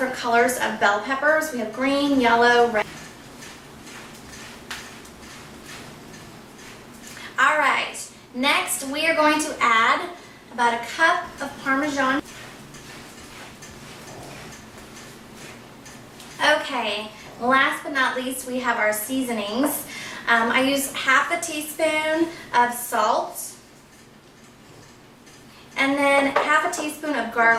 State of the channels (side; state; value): both; identical; correlation 1.00